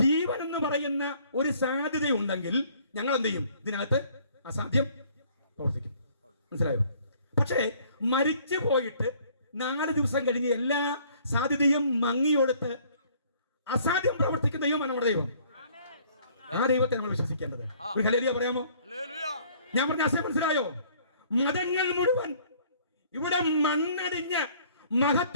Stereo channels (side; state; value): both; inverted; correlation -0.58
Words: എന്ന് പറയുന്ന ഒരു സാധ്യതയുണ്ടെങ്കിൽ ഞങ്ങൾ എന്ത് ചെയ്യും, ഇതിനകത്ത് അസാധ്യം പ്രവർത്തിക്കും. മനസ്സിലായോ? പക്ഷേ മരിച്ചു പോയിട്ട് 4 ദിവസം കഴിഞ്ഞ് എല്ലാ സാധ്യതയും മങ്ങിയൊടുത്ത് അസാധ്യം പ്രവർത്തിക്കുന്ന ദൈവമാണ് നമ്മുടെ ദൈവം. ആ ദൈവത്തെ നമ്മൾ വിശ്വസിക്കേണ്ടത്. ഒരു ഹല്ലേലൂയ പറയാമോ? ഞാൻ പറഞ്ഞ ആശയം മനസ്സിലായോ? മതങ്ങൾ മുഴുവൻ ഇവിടെ മണ്ണടിഞ്ഞ